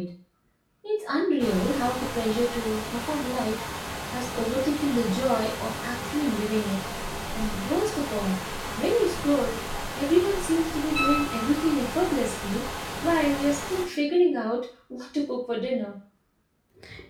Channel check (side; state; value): both; identical; correlation 1.00